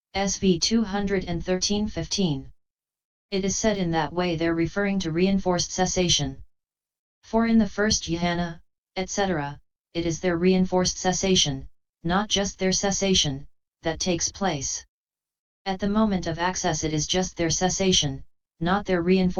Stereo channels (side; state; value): both; identical; correlation 1.00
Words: SV 213:15. It is said in that way there referring to reinforced cessation. For in the first jhana, etc., it is their reinforced cessation, not just their cessation, that takes place. At the moment of access it is just their cessation, not their